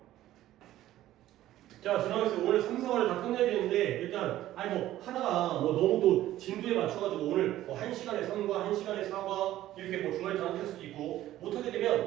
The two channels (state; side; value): quieter; left; 14.0 dB